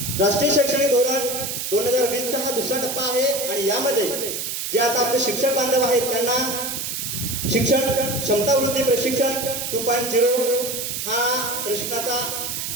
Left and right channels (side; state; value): right; noise; hiss, 4 dB below the sound